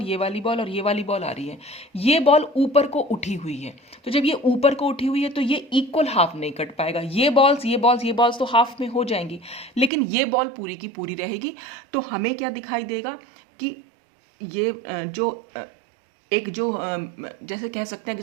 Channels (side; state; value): left; drops out; at 9.9 s